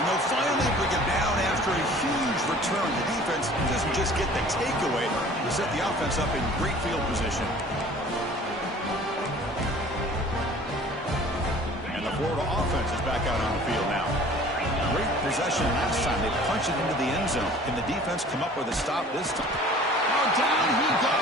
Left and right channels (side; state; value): both; normal; correlation 0.48